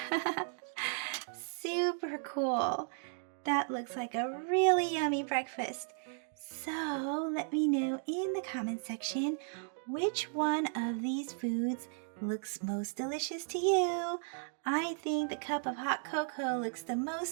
super cool. That looks like a really yummy breakfast. So let me know in the comment section which one of these foods looks most delicious to you. I think the cup of hot cocoa looks the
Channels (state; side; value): silent; left; 54 dB below the other